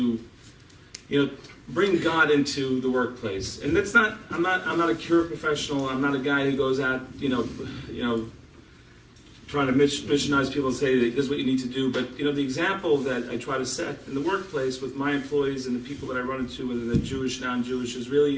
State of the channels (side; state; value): both; identical; correlation 1.00